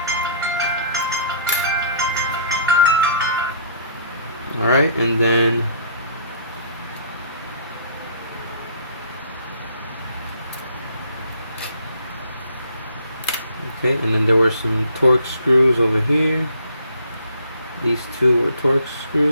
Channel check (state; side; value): inverted; both; correlation -0.58